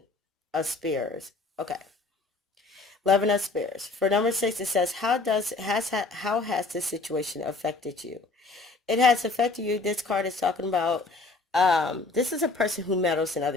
of spears. Okay. 11 of spears. For number 6, it says, how has this situation affected you? It has affected you. This card is talking about, this is a person who meddles in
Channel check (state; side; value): quieter; right; 3.7 dB